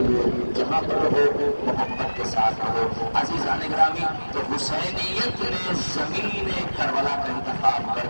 لیے، جہاں پر ہو محبت کے ساتھ رہو۔ عزیزان گرامی، تو حسینیت نے زمین کربلا کا انتخاب کر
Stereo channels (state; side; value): inverted; both; correlation -1.00